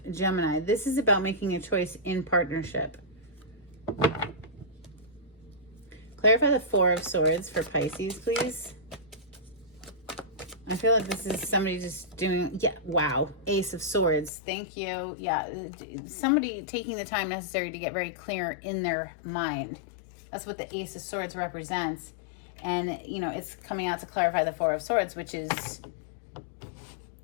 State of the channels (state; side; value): drops out; right; at 14.3 s